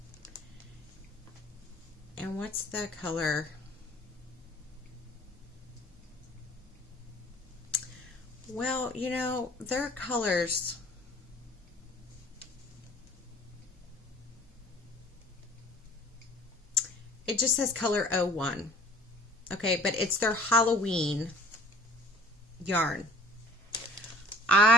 And what's the color? Well, you know, their colors. It just says color 01. Okay, but it's their Halloween yarn.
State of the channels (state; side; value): normal; both; correlation 0.50